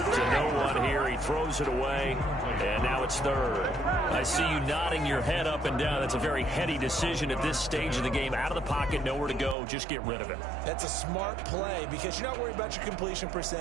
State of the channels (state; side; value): drops out; left; at 9.6 s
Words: no one here. He throws it away. And now it's 3rd. I see you nodding your head up and down. That's a very heady decision at this stage of the game. Out of the pocket, nowhere to go. Just get rid of it. That's a smart play because you're not worried about your completion